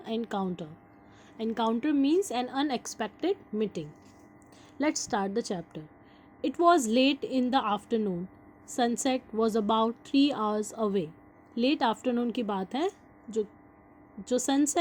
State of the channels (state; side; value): identical; both; correlation 1.00